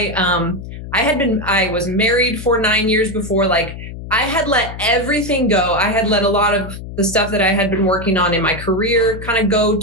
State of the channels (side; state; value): left; noise; hum, 11 dB below the sound